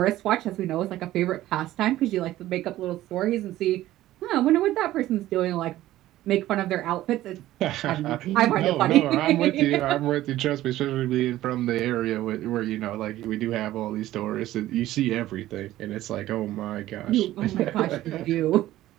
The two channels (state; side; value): quieter; left; 14.8 dB